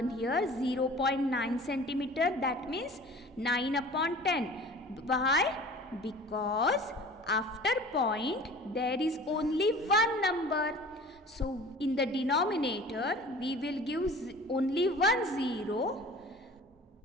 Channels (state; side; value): normal; both; correlation 0.43